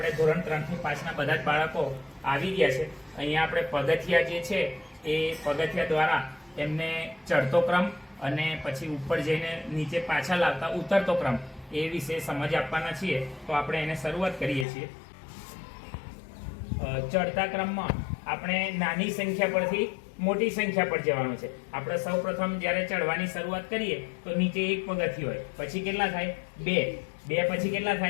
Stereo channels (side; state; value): right; drops out; at 14.7 s